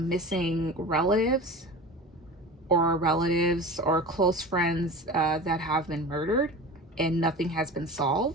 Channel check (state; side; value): normal; both; correlation 0.33